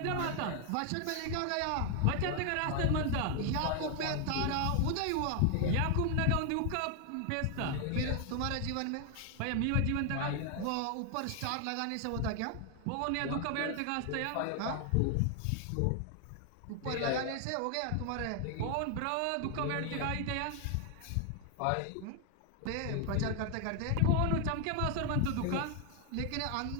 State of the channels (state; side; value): different; both; correlation 0.00